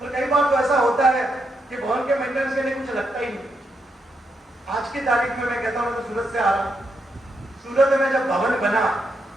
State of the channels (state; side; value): normal; both; correlation 0.81